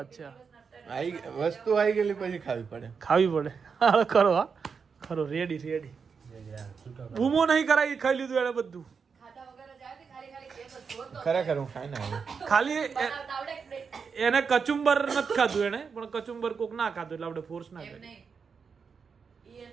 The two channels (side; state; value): left; quieter; 5.8 dB